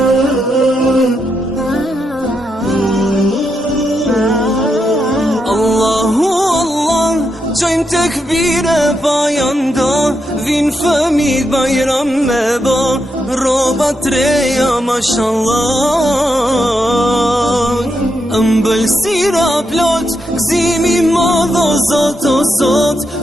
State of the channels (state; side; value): normal; both; correlation 0.83